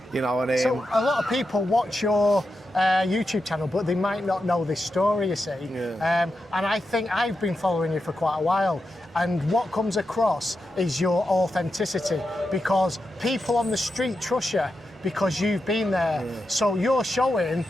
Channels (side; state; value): both; normal; correlation 0.88